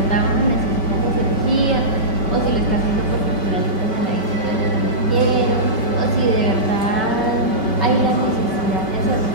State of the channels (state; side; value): late; right; 5.2 ms